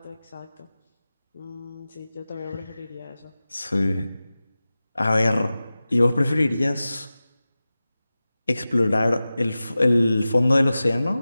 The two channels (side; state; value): both; inverted; correlation -0.96